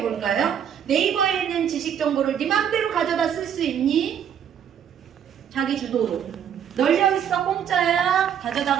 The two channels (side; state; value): left; quieter; 8.7 dB